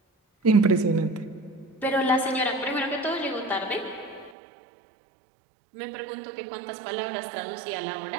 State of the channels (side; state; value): left; drops out; at 4.3 s